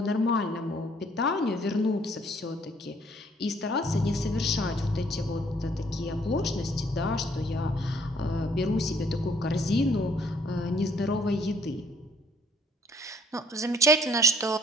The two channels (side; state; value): both; normal; correlation 0.62